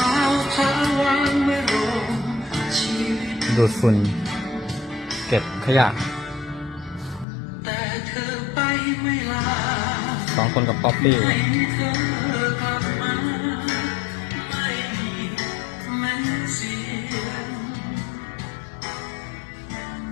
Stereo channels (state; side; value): drops out; right; at 7.2 s